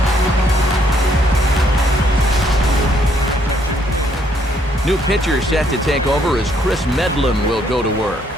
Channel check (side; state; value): both; normal; correlation 0.69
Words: New pitcher set to take over as Chris Medlin will go to work.